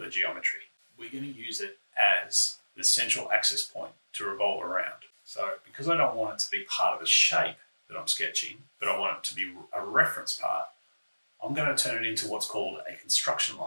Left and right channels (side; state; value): both; inverted; correlation -1.00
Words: geometry. We're going to use it as the central axis point to revolve around. So because I don't want it to be part of the shape that I'm sketching, but I want it to be a reference part, I'm going to turn it into what's called a construction